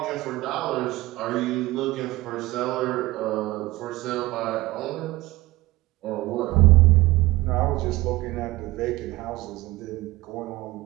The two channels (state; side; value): quieter; left; 18.8 dB